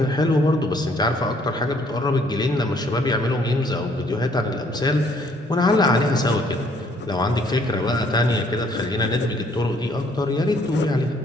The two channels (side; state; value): both; normal; correlation 0.64